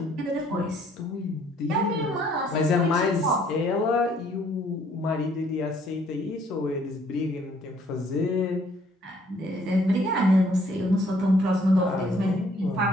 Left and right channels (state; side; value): normal; both; correlation 0.63